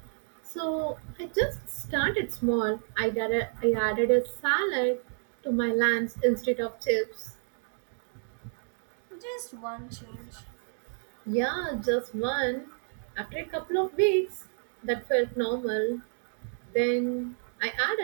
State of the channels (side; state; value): left; silent; digital silence